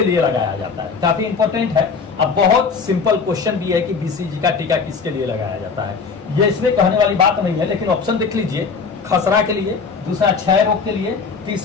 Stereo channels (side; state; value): right; quieter; 5.2 dB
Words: लगाया जाता है? काफी इंपॉर्टेंट है। अब बहुत सिंपल क्वेश्चन भी है कि बीसीजी का टीका किसके लिए लगाया जाता है। ये इसमें कहने वाली बात नहीं है, लेकिन ऑप्शन देख लीजिए। खसरा के लिए, दूसरा क्षय रोग के लिए,